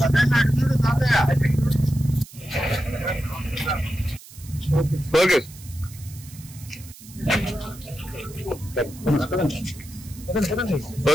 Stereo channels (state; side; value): noise; right; hiss, 19 dB below the sound